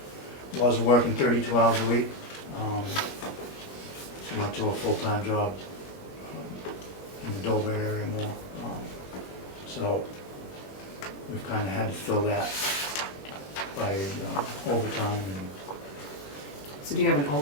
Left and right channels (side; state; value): right; late; 21 ms